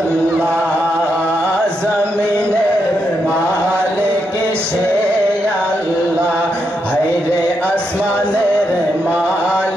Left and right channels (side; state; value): both; normal; correlation 0.82